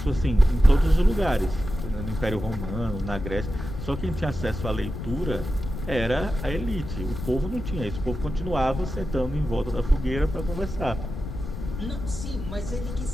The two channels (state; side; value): noise; left; rumble, 7 dB below the sound